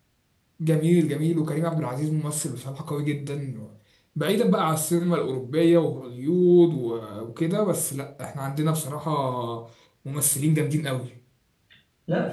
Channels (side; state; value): both; identical; correlation 1.00